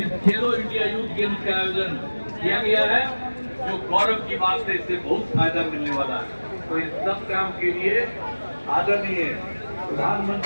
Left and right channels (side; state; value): both; inverted; correlation -1.00